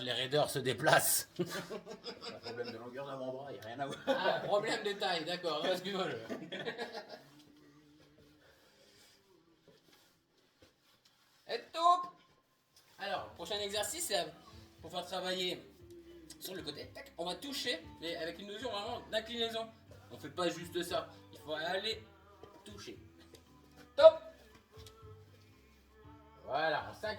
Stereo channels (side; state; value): both; identical; correlation 1.00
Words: les raideurs se déplacent. Un problème de longueur d'avant-bras, il n'y a rien à voir. Ah, problème de taille, d'accord. Excuse-moi. Et top. Alors, prochain exercice, c'est pour faire travailler sur le côté. Tac, on va toucher, mais avec une notion vraiment d'inclinaison. On fait pas juste ça. Il faut aller toucher. Top. Voilà, on